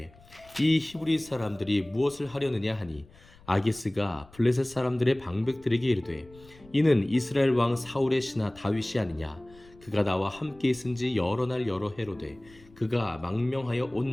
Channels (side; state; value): left; noise; rumble, 25 dB below the sound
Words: 이 히브리 사람들이 무엇을 하려느냐 하니 아기스가 블레셋 사람들의 방백들에게 이르되 이는 이스라엘 왕 사울의 신하 다윗이 아니냐. 그가 나와 함께 있은지 여러 날 여러 해로되 그가 망명하여 온